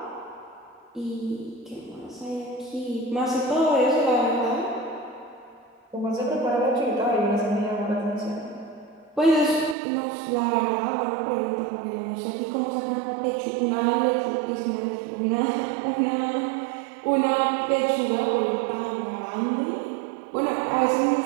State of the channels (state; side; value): drops out; left; at 9.8 s